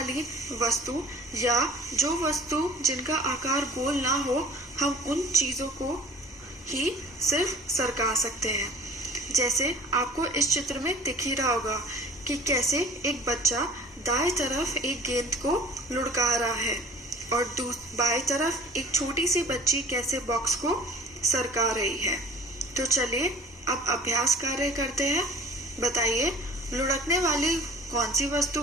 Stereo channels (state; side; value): normal; both; correlation 0.46